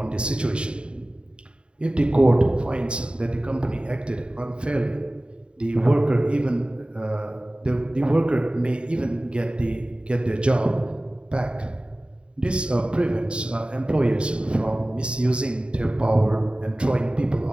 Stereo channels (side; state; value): left; late; 0.053 ms